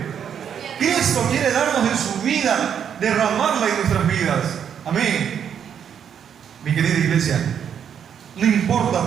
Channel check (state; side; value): quieter; left; 8.3 dB